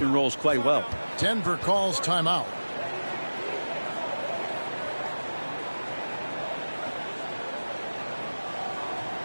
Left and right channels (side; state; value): both; inverted; correlation -1.00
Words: and rolls quite well. Denver calls timeout.